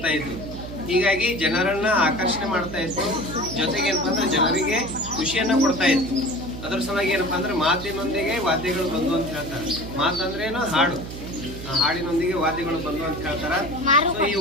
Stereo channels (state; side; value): noise; right; hum, 10 dB below the sound